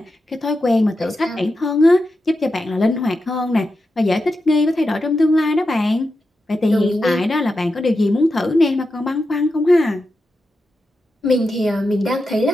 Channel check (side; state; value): both; normal; correlation 0.89